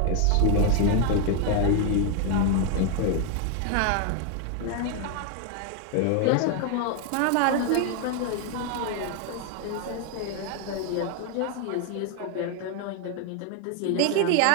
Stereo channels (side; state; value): both; different; correlation 0.01